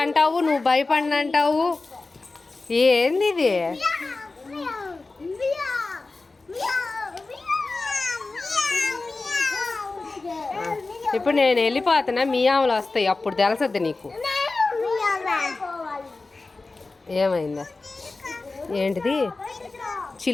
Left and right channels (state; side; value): quieter; right; 3.5 dB